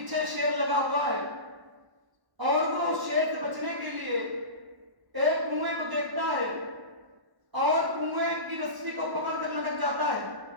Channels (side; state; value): left; late; 1.1 ms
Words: شیر لگا ہوا ہے اور وہ شیر سے بچنے کے لیے ایک کنویں کو دیکھتا ہے اور کنویں کی رسی کو پکڑ کر لٹک جاتا ہے.